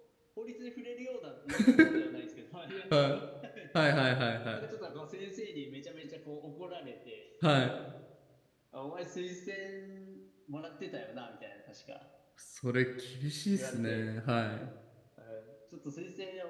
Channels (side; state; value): both; identical; correlation 1.00